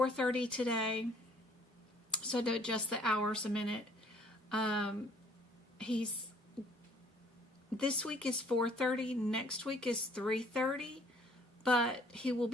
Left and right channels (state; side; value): normal; both; correlation 0.59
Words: today, so I had to adjust the hours a minute. This week is 4:30, next week is 3:30, but he will